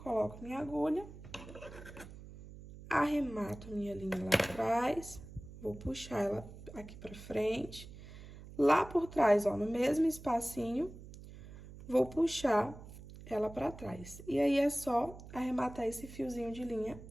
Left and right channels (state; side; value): noise; right; hum, 15 dB below the sound